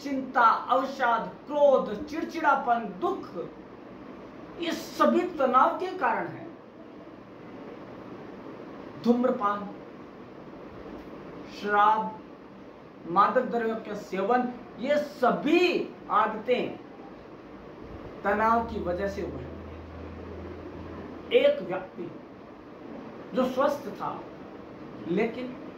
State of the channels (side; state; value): both; identical; correlation 1.00